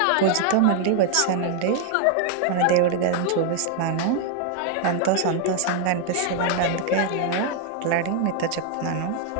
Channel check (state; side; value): different; both; correlation 0.00